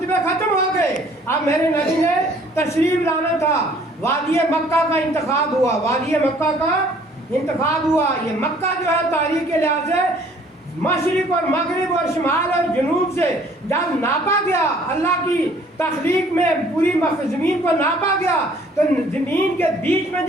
ختم ہو گئے، اب میرے نبی نے تشریف لانا تھا۔ وادی مکہ کا انتخاب ہوا، وادی مکہ کا انتخاب ہوا۔ یہ مکہ جو ہے تاریخ کے لحاظ سے مشرق اور مغرب اور شمال اور جنوب سے جب ناپا گیا، اللہ کی تخلیق میں پوری زمین کو ناپا گیا تو زمین کے بیچ میں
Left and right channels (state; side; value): normal; both; correlation 0.57